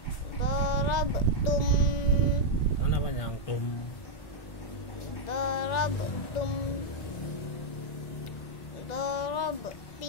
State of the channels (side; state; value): right; late; 1.9 ms